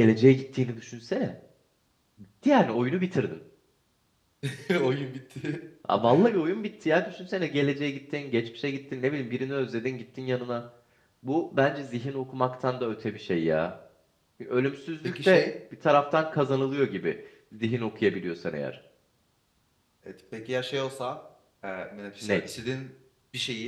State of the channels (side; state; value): both; identical; correlation 1.00